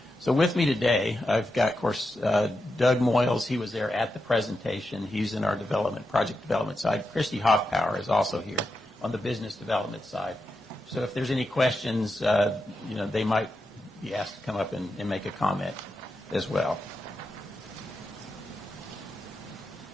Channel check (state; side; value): normal; both; correlation 0.87